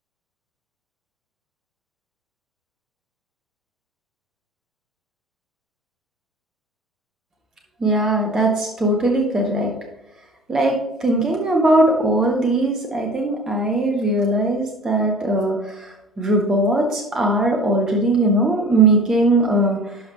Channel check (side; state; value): both; normal; correlation 0.44